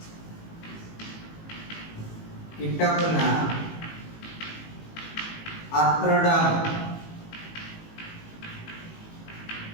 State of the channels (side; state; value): right; late; 18 ms